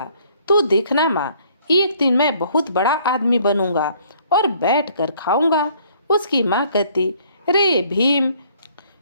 तू देखना माँ, एक दिन मैं बहुत बड़ा आदमी बनूंगा और बैठ कर खाऊंगा। उसकी माँ कहती, रे भीम,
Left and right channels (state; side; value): inverted; both; correlation -0.61